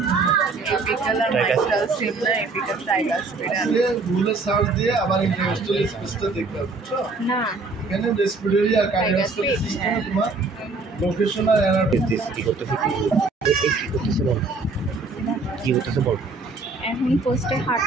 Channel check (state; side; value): quieter; left; 3.8 dB